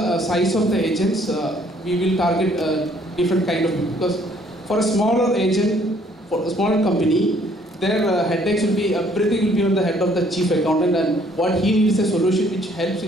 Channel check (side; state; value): both; normal; correlation 0.62